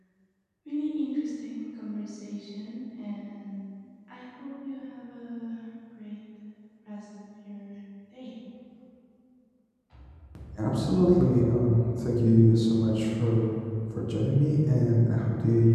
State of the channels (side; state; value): both; identical; correlation 1.00